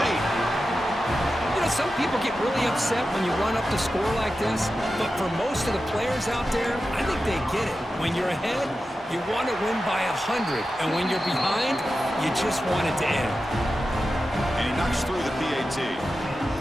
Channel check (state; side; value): normal; both; correlation 0.92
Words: You know, some people get really upset when you run up the score like this, but for most of the players out there, I think they get it. When you're ahead, you want to win by 100, and when you're behind, you just want it to end. And he knocks through the PAT.